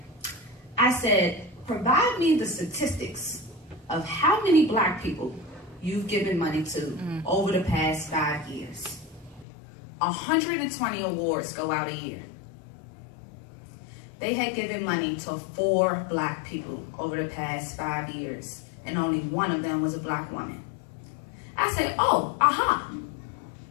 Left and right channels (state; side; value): drops out; right; at 9.5 s